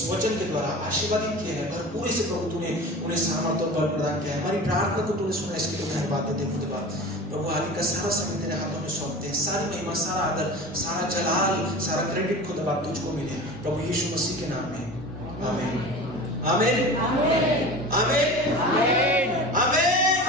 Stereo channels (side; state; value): both; normal; correlation 0.34